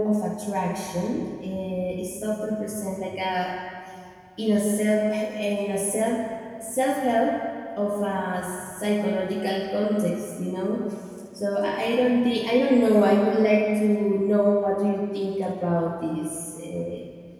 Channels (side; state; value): both; identical; correlation 1.00